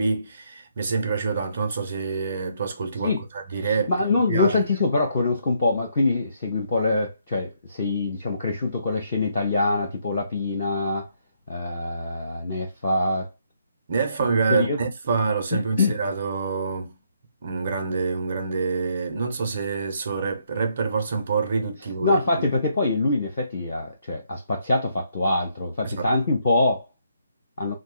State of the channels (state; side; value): inverted; both; correlation -0.72